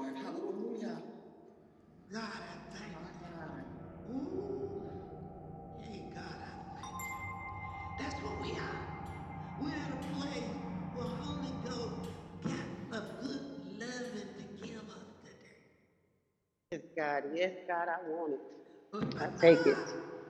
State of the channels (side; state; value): both; identical; correlation 1.00